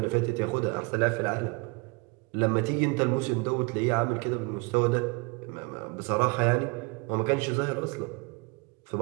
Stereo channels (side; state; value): left; quieter; 29.4 dB